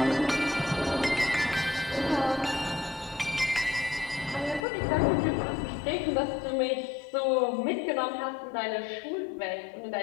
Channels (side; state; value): right; drops out; at 4.7 s